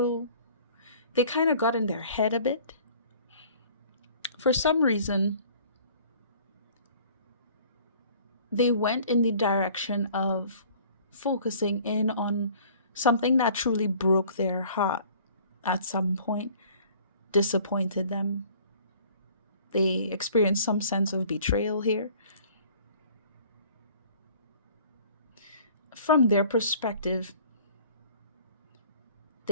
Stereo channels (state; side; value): inverted; both; correlation -0.52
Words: they kind of got in their head a bit. For some reason, they went in the direction of focusing in on something that truly broke their heart at some point, disappointed them. They experienced some sense of betrayal here. From their perspective,